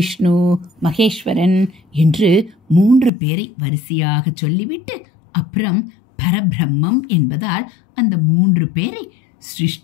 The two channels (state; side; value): drops out; right; at 3.1 s